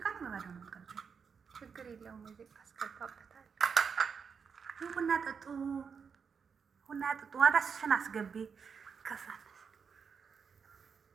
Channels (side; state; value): left; quieter; 6.2 dB